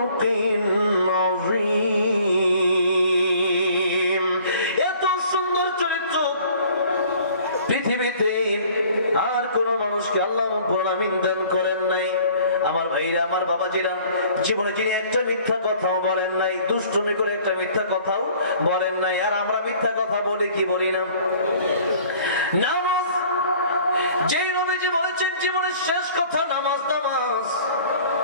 আযীম। এত সুন্দর চরিত্র পৃথিবীতে আর কোন মানুষকে আল্লাহ রাব্বুল আলামিন দান করেন নাই। আমার ভাইরা, আমার বাবাজিরা, জীবনে যিনি একটা মিথ্যা কথাও বলেন নাই, দুষ্টুমি করে একটা মিথ্যা কথাও বলেন নাই। আর আমরা মিথ্যা কথা বলি কি বলি না? নামাজ, যেই নবীজি বলেছেন জীবনের শেষ কথা নামাজ, নামাজ,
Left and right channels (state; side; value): inverted; both; correlation -0.52